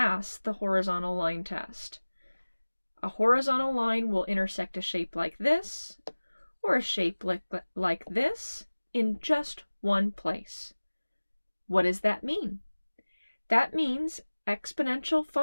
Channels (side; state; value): both; inverted; correlation -1.00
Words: the horizontal line test. A horizontal line will intersect a shape like this, or a shape like this, in just one place. What does that mean? That means exponential